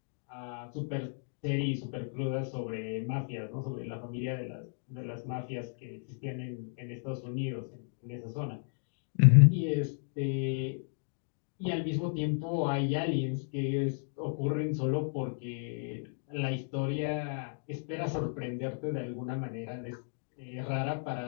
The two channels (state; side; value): silent; right; digital silence